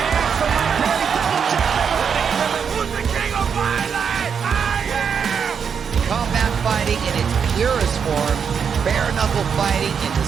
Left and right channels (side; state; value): left; quieter; 6.8 dB